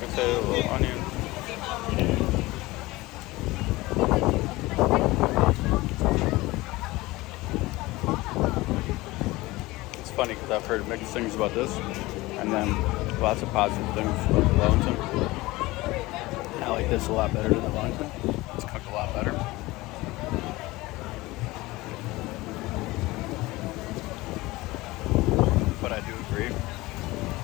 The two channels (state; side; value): quieter; right; 20.2 dB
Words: potato, a little onion. It's funny because I've heard mixed things about this, and then lots of positive things about the Wellington. I like this a lot better than the Wellington. It's cooked a lot better. But I do agree,